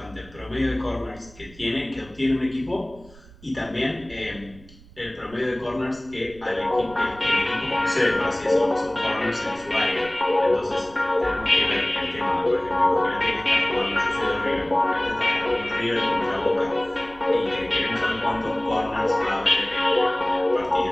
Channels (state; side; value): noise; right; rumble, 22 dB below the sound